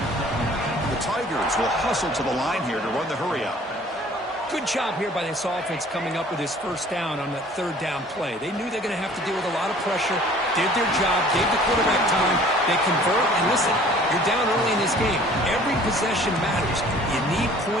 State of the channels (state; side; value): normal; both; correlation 0.51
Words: The Tigers will hustle to the line here to run the hurry out. Good job here by this offense coming up with this 1st down on that 3rd down play. They knew they're going to have to deal with a lot of pressure, did their job, gave the quarterback time, they convert, and listen, you're down early in this game. Every possession matters. You need